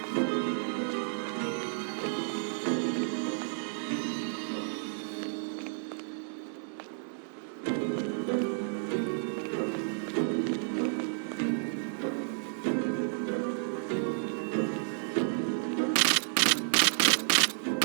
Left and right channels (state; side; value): silent; left; digital silence